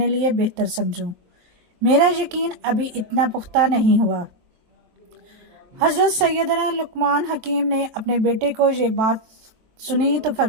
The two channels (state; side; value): late; left; 23 ms